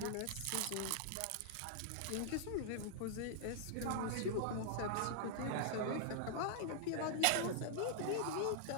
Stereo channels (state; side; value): different; both; correlation -0.01